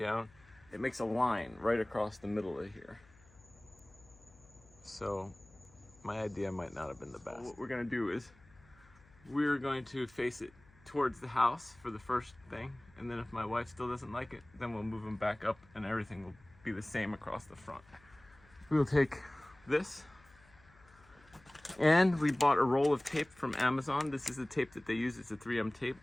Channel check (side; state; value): left; noise; hum, 27 dB below the sound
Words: It makes a line right across the middle of here. So my idea might not have been the best. What we're gonna do is we're going to face it towards the house for the first thing, and then if my wife still doesn't like it, then we'll move them back up and everything will be the same across the front. We'll take this, and we bought a roll of tape from Amazon. This is the tape that they use. It's a 3M tape,